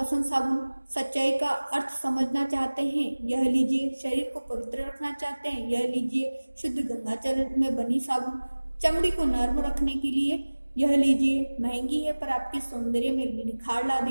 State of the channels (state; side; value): inverted; both; correlation -1.00